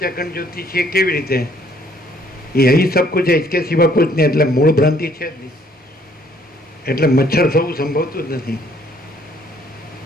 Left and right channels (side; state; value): both; normal; correlation 0.63